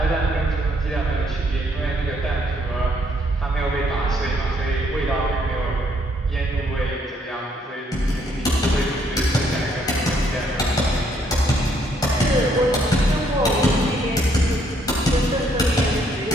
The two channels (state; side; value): normal; both; correlation 0.69